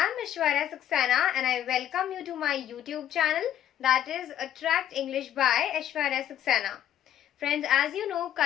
Aishwarya Saxena and I welcome you to my YouTube channel, that is Attract English by Aishwarya Saxena. Friends, as you know,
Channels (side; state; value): right; quieter; 11.0 dB